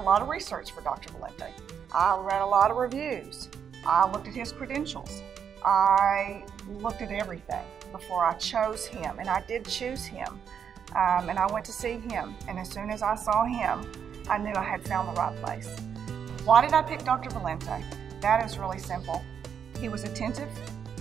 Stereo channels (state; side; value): quieter; left; 7.7 dB